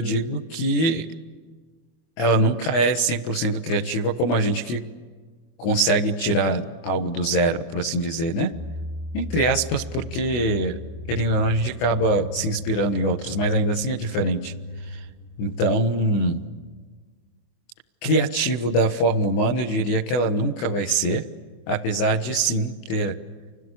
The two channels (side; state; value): right; late; 25 ms